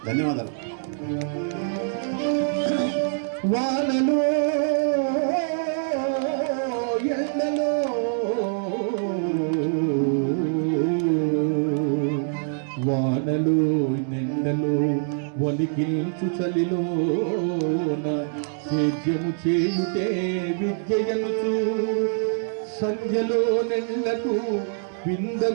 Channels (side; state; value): left; silent; digital silence